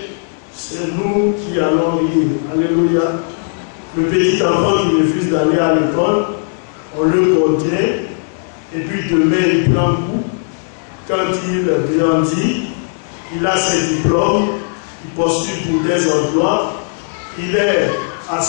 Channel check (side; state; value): right; silent; digital silence